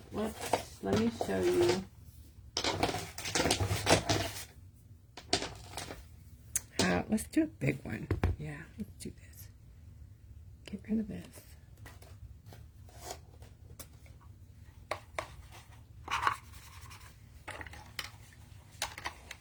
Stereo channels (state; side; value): identical; both; correlation 1.00